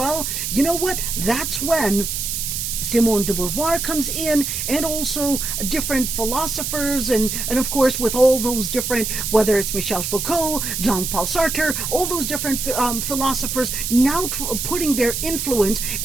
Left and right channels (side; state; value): right; noise; hiss, 3 dB below the sound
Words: you know what, that's when Simone de Beauvoir comes in, and also different philosophers, and of course with all those different, whether it's Michel Foucault, Jean-Paul Sartre, all those different philosophers now putting their influence,